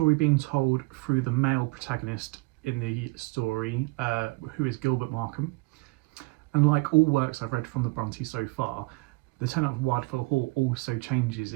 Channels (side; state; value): left; quieter; 25.8 dB